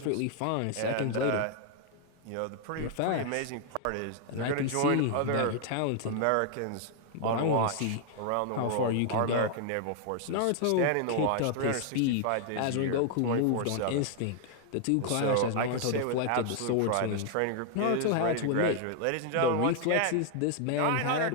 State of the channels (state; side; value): different; both; correlation 0.00